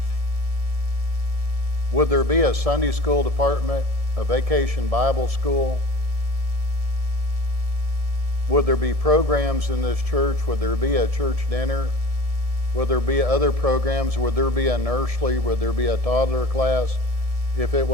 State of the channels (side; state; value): left; late; 1.7 ms